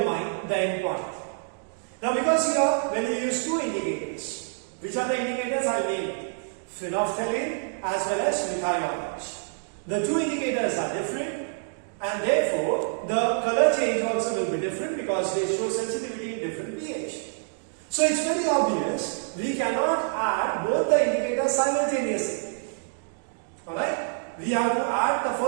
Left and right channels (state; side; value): silent; left; digital silence